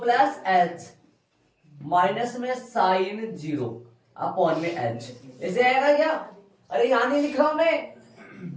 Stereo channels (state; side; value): identical; both; correlation 1.00